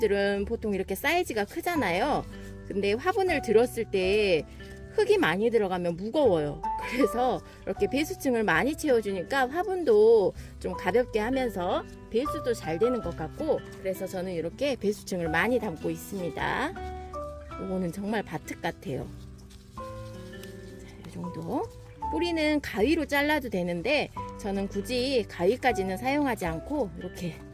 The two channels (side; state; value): both; identical; correlation 1.00